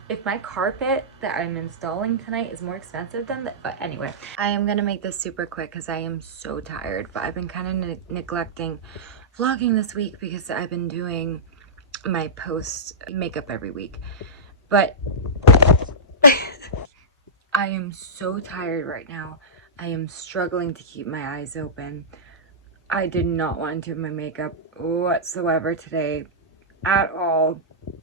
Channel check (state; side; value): normal; both; correlation -0.15